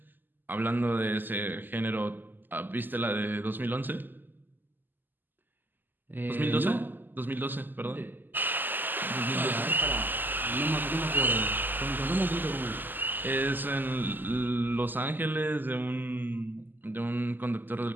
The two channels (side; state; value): left; late; 0.089 ms